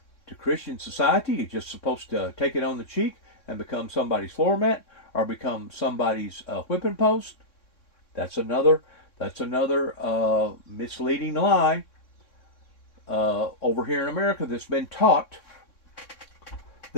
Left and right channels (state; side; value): late; right; 3.6 ms